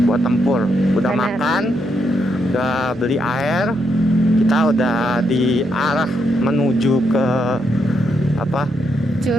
buat tempur. Udah Benar. makan, udah beli air. Kita udah di arah menuju ke apa,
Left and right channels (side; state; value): both; normal; correlation 0.78